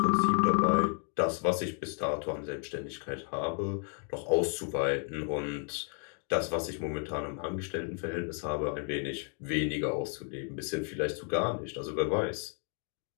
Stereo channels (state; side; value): quieter; right; 38.5 dB